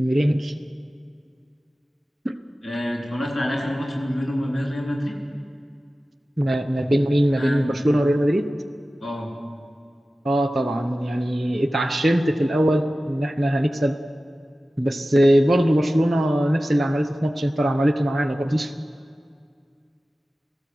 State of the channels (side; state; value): both; normal; correlation 0.95